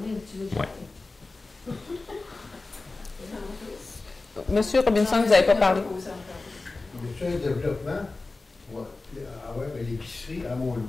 donné, tu veux jamais. Monsieur Robinson, vous n'avez pas parlé. Sur le développement, l'épicerie à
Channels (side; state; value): right; quieter; 3.5 dB